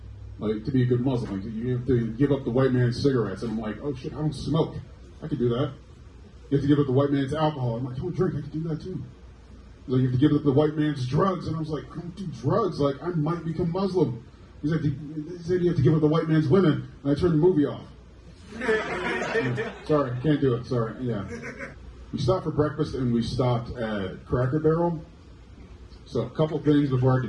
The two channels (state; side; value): identical; both; correlation 1.00